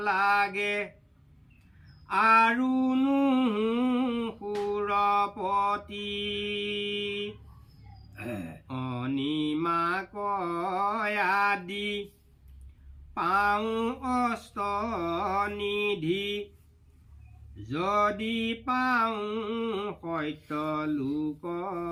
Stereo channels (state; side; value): identical; both; correlation 1.00